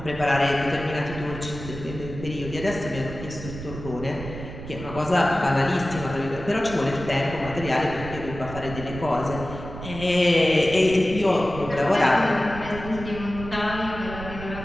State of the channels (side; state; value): right; noise; rumble, 11 dB below the sound